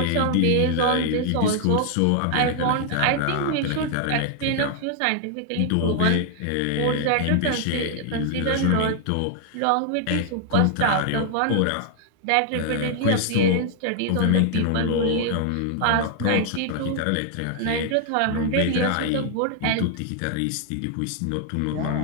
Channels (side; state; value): both; different; correlation 0.00